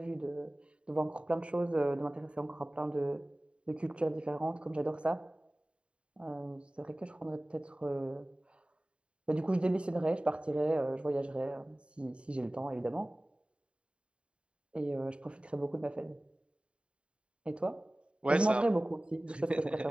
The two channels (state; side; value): late; left; 0.057 ms